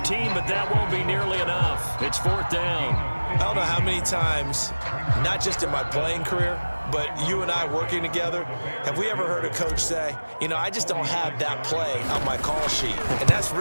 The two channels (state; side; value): inverted; both; correlation -1.00